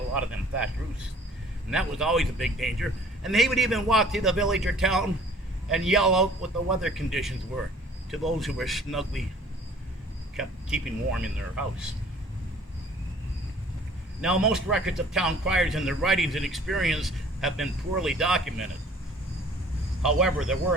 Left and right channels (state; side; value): normal; both; correlation 0.53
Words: lot of them thatched roofs, and that was always a big danger. And he would even walk through the village or town and yell out what the weather conditions were to those who were snugly keeping warm in their house. Now, most records of town criers and their writings and experience have been poorly documented. However, there were